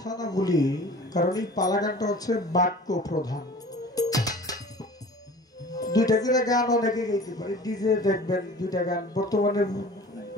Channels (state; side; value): normal; both; correlation 0.43